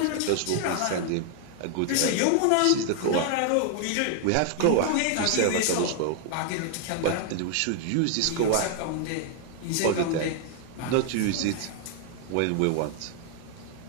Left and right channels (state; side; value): different; both; correlation 0.00